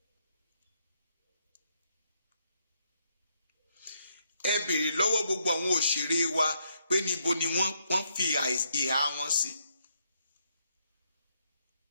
Ẹ béèrè lọ́wọ́ gbogbo àwọn òṣèré wa pé níbo ni wọ́n fi ìhà wọn sí.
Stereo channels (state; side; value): inverted; both; correlation -0.76